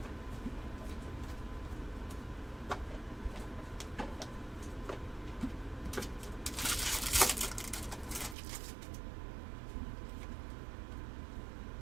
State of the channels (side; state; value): left; drops out; at 8.3 s